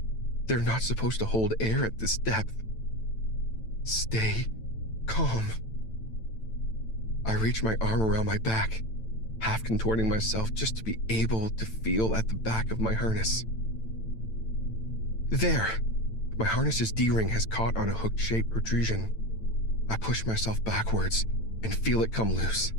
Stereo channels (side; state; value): right; late; 9.0 ms